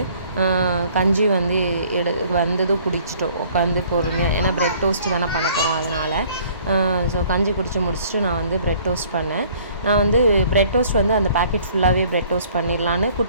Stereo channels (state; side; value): inverted; both; correlation -0.56